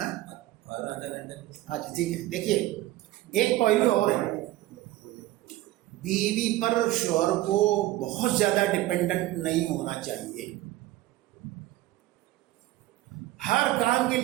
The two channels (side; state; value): left; quieter; 16.4 dB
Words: اچھا ٹھیک ہے. دیکھیے ایک پہلو اور ہے، بیوی پر شوہر کو بہت زیادہ ڈپینڈنٹ نہیں ہونا چاہیے، ہر کام کے